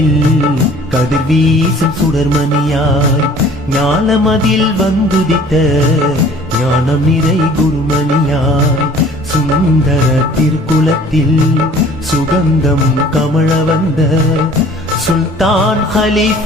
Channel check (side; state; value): both; normal; correlation 0.51